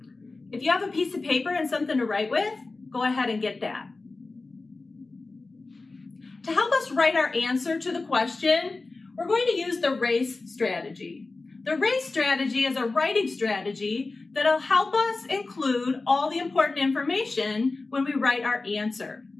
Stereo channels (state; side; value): quieter; right; 3.6 dB